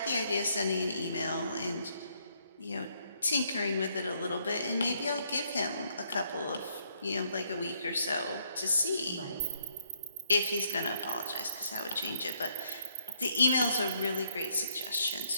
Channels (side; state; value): both; inverted; correlation -0.72